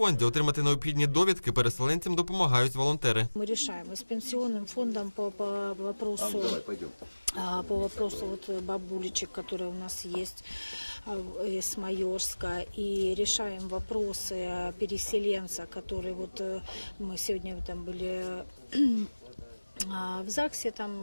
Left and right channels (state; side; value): inverted; both; correlation -1.00